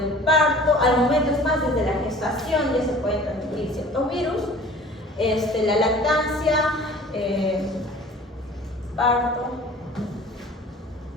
parto, al momento es más desde la gestación ya se pueden transmitir ciertos virus, la lactancia, parto,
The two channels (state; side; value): normal; both; correlation 0.46